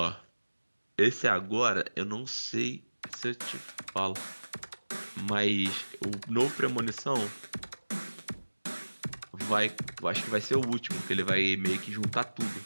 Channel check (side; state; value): both; inverted; correlation -1.00